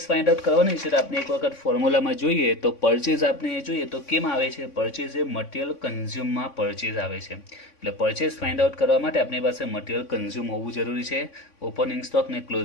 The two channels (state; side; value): late; right; 3.6 ms